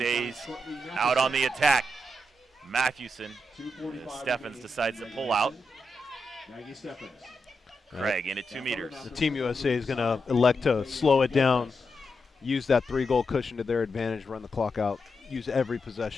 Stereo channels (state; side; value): normal; both; correlation 0.86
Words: out on the attack. Matthewson. Steffens decides to pull out. Maggie Steffens. Craig in at 2 meters. The Team USA is going to elect to slow it down, use that 3-goal cushion to their advantage, run the clock out, use every